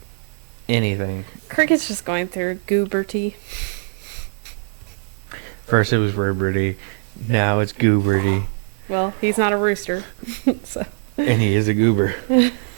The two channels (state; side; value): silent; left; digital silence